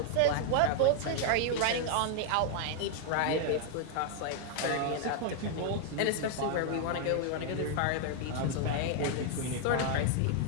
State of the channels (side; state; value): both; different; correlation 0.00